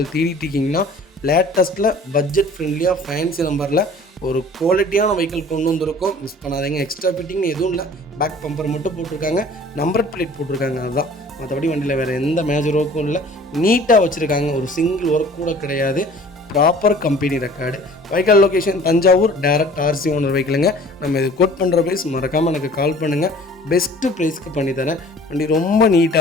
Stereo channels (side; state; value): both; normal; correlation 0.48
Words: தேடிட்டு இருக்கீங்கன்னா லேட்டஸ்ட்டில் பட்ஜெட் ஃப்ரெண்ட்லியாக ஃபேன்சி நம்பரில் ஒரு குவாலிட்டியான வெஹிக்கிள் கொண்டு வந்திருக்கோம், மிஸ் பண்ணாதீங்க. எக்ஸ்ட்ரா ஃபிட்டிங்னு எதுவும் இல்லை. பேக் பம்பர் மட்டும் போட்டிருக்காங்க, நம்பர் பிளேட் போட்டிருக்காங்க, அதுதான். மற்றபடி வண்டியில் வேறு எந்த மேஜர் ஒர்க்கும் இல்லை. நீட்டாக வச்சுருக்காங்க. ஒரு சிங்கிள் ஒர்க் கூட கிடையாது. Proper company record. Vehicle location Thanjavur. Direct RC owner வெஹிக்கிளுங்க. நம்ம இது கோட் பண்ணுற ப்ரைஸ் மறக்காமல் எனக்கு கால் பண்ணுங்கள். பெஸ்ட்டு ப்ரைஸ்க்கு பண்ணித்தரேன். வண்டி ரொம்ப